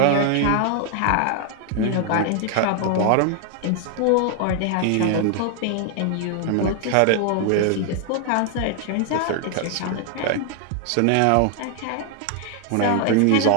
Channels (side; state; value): both; different; correlation 0.00